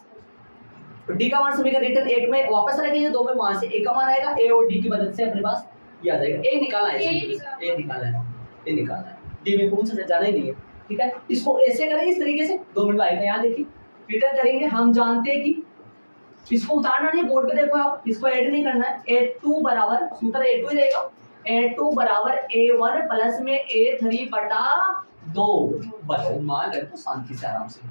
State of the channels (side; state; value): both; inverted; correlation -1.00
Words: तो D का मान समीकरण रिटर्न 1 में वापस रखेंगे, 2 में वहां से A का मान आएगा, A और D की मदद से अपने पास ये आ जाएगा। A निकालना है, A निकालना है, D में पूछ जाना ही नहीं है, ठीक है। इसको ऐसे करेंगे, इस तरीके से 2 मिनट आएगा, यहाँ देखिए रिटर्न करेंगे। हम जानते हैं कि इसको उतारना नहीं, बोर्ड पे देखो आप, इसको ऐड नहीं करना है। A2 बराबर, सूत्र A2 ही रहेगा, A2 बराबर A1 प्लस में A3 बटा 2। बताओ, मान रखो शांति से, आराम से,